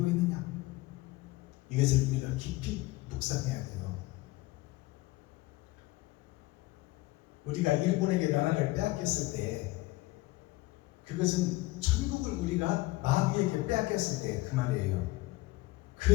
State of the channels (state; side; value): quieter; right; 19.8 dB